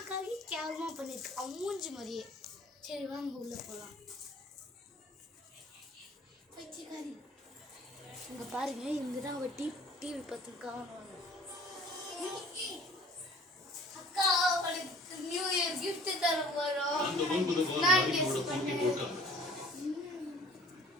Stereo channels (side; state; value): both; normal; correlation 0.50